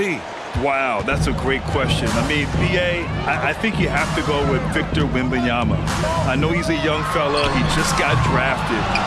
Wow, that's a great question. I mean, BA, I think you have to go with Victor Wembanyama. I know he's a young fella. He just got drafted.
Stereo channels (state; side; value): identical; both; correlation 1.00